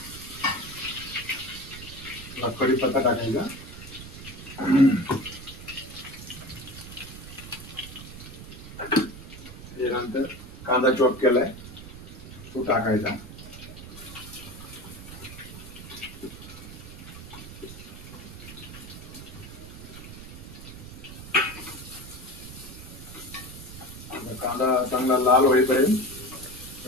कढीपत्ता टाकायचा, त्यानंतर कांदा चॉप केलाय तो टाकायचा, कांदा चांगला लाल होईपर्यंत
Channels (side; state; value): right; noise; rumble, 13 dB below the sound